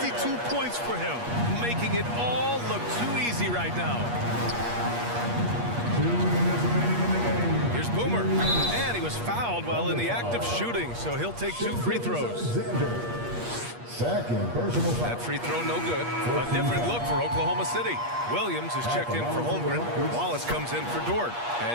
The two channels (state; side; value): late; left; 8.4 ms